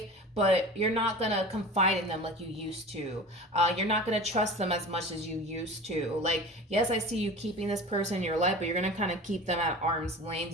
but you're not going to confide in them like you used to. You're not going to trust them as much as you used to. Like, yes, I see you keeping this person in your life, but you're going to kind of keep them at arm's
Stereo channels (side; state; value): both; normal; correlation 0.36